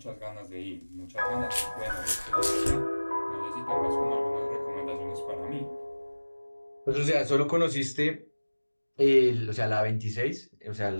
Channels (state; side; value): inverted; both; correlation -1.00